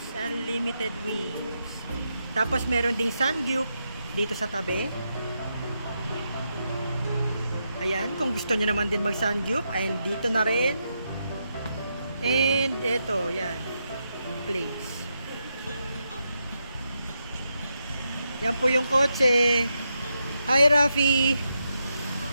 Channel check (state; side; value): inverted; both; correlation -0.84